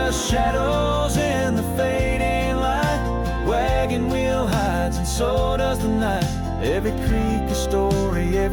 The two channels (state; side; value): identical; both; correlation 1.00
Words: shadows in the fading light, wagon wheel hides and so does the night. Every creek a story,